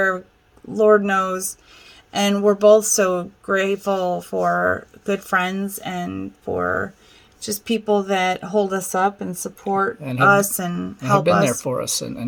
Lord knows. And we're both so grateful for good friends and for just people that hold us up and support and us and have help been there us. for us and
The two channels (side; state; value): both; identical; correlation 1.00